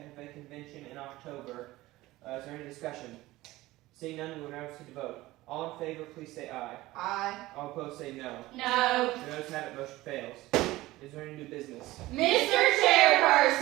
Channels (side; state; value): left; quieter; 18.1 dB